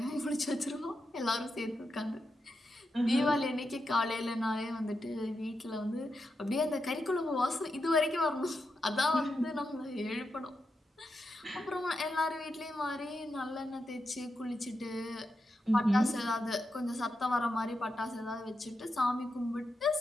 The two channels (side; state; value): both; normal; correlation 0.86